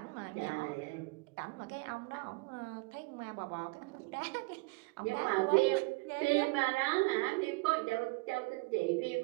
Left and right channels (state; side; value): quieter; left; 26.3 dB